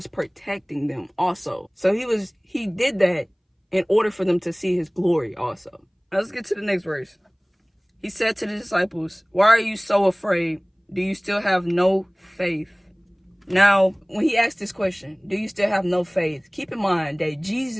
protecting them also. So he did that in order for them to see his glory also. Now let's get to the next verse. He said to the disciples, "Why are you so afraid? Do you still have no faith?" Now, when he asked this question, do you still have no faith? Keep in mind that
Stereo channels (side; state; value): both; identical; correlation 1.00